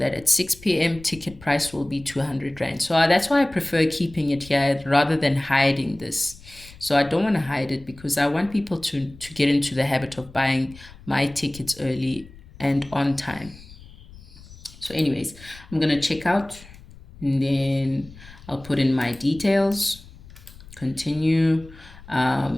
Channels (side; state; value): left; noise; rumble, 20 dB below the sound